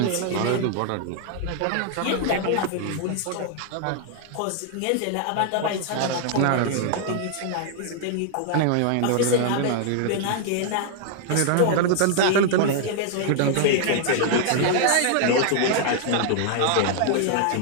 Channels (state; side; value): different; both; correlation 0.00